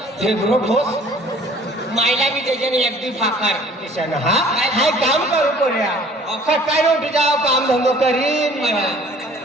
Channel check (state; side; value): normal; both; correlation 0.52